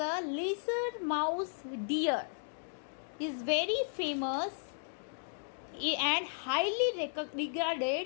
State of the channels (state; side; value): silent; right; digital silence